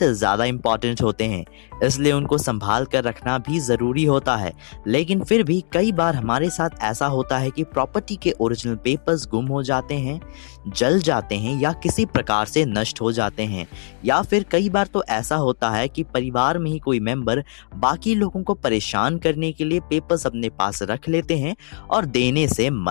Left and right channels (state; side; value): silent; right; digital silence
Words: ज़्यादा इम्पॉर्टेंट होते हैं, इसलिए उनको संभाल कर रखना भी ज़रूरी होता है। लेकिन फिर भी कई बार हमारे साथ ऐसा होता है कि प्रॉपर्टी के ओरिजिनल पेपर्स गुम हो जाते हैं, जल जाते हैं या किसी प्रकार से नष्ट हो जाते हैं। या फिर कई बार तो ऐसा होता है कि परिवार में ही कोई मेंबर बाकी लोगों को परेशान करने के लिए पेपर्स अपने पास रख लेते हैं और देने से